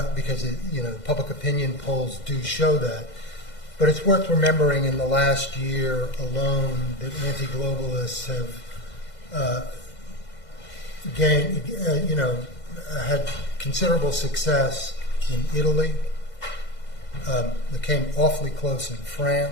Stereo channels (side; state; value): right; late; 2.0 ms